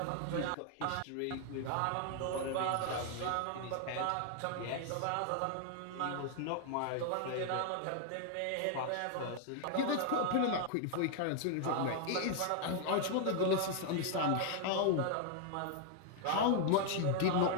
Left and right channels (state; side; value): different; both; correlation 0.00